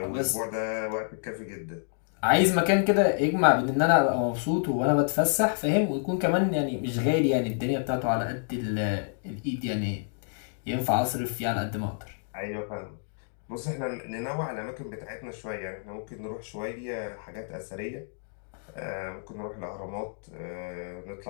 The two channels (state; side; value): silent; right; digital silence